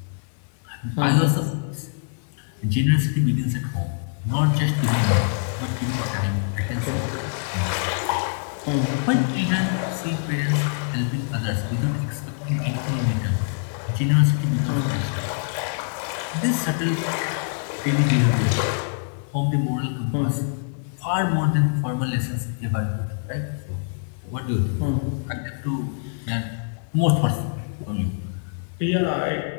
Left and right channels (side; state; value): right; silent; 56 dB below the other